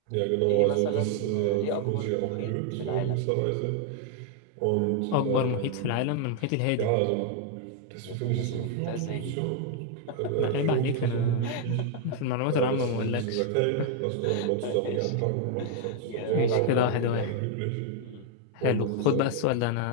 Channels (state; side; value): different; both; correlation 0.00